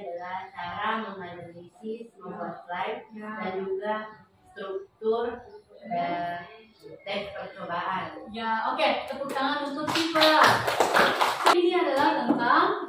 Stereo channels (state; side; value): identical; both; correlation 1.00